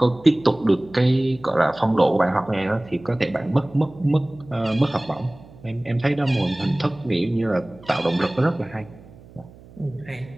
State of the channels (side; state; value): right; noise; hum, 22 dB below the sound